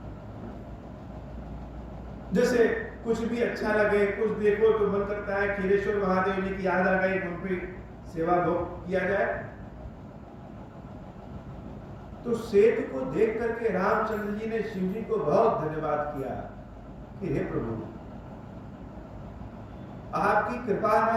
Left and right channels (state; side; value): identical; both; correlation 1.00